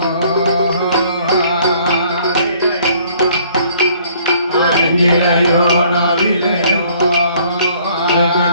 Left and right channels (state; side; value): inverted; both; correlation -0.60